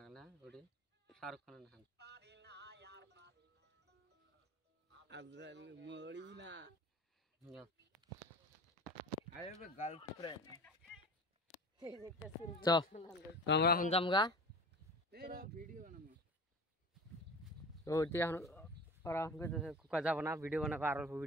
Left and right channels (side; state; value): both; normal; correlation 0.36